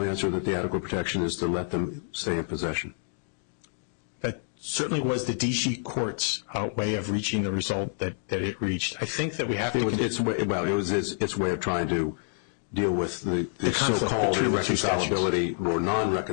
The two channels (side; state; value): right; silent; digital silence